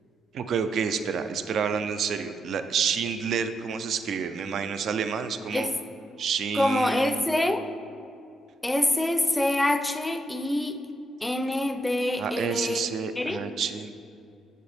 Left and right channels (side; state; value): both; normal; correlation 0.81